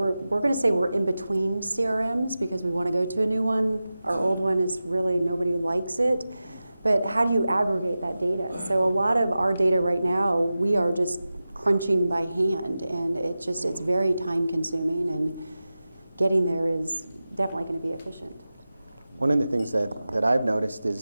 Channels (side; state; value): both; inverted; correlation -0.95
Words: going to say we're in between CRMs because we want to go to a new one. Our old one is really, nobody likes it. But how do you aggregate that data? So a lot of our data right now, we are just crunching by hand, and it's very time consuming, and getting there is definitely going to be efficient. One of the things that I've noticed is